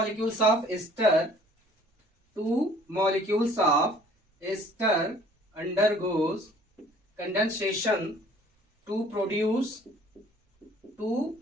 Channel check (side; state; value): both; normal; correlation 0.54